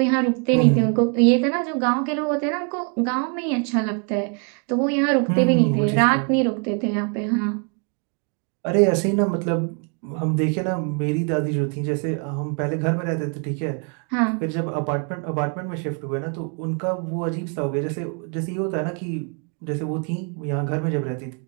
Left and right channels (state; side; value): quieter; left; 38.3 dB